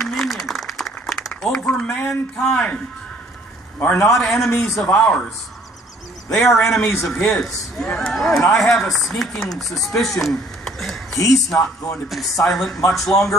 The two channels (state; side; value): normal; both; correlation 0.59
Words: over mankind are not enemies of ours. They are enemies of his. And I have a sneaking suspicion he's not going to be silent much